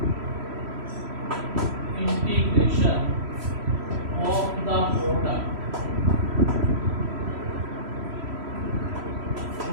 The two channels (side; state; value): left; late; 3.1 ms